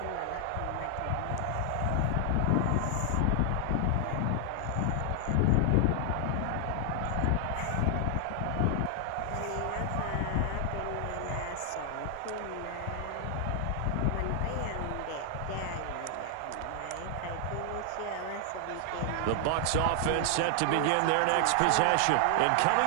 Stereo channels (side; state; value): both; different; correlation 0.00